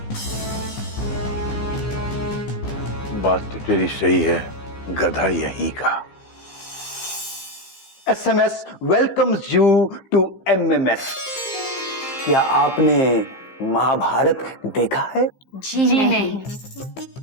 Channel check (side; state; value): right; late; 15 ms